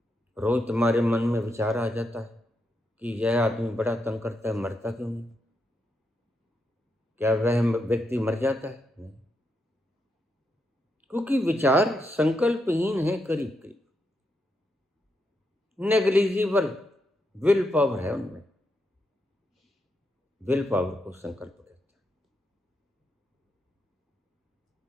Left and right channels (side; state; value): both; normal; correlation 0.82